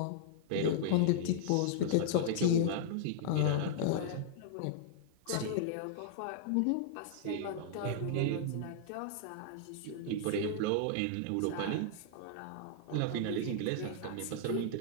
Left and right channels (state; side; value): different; both; correlation -0.01